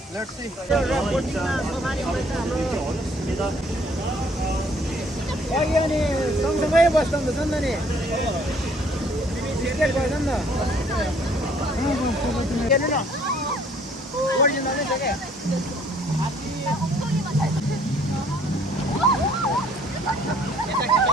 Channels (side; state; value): both; normal; correlation 0.61